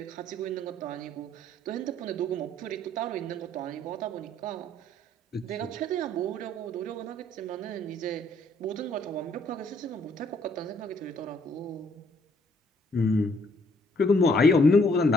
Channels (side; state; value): both; normal; correlation 0.65